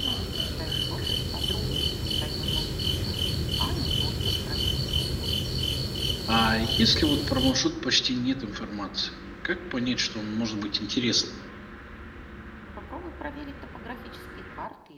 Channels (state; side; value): identical; both; correlation 1.00